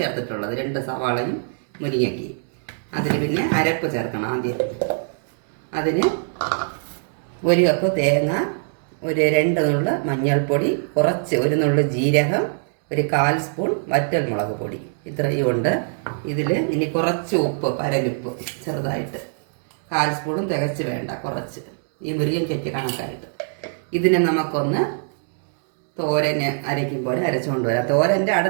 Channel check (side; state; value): left; silent; digital silence